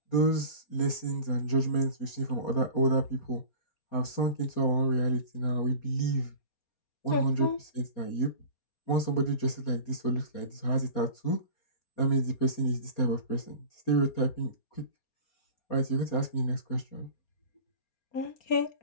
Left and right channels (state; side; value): late; right; 4.3 ms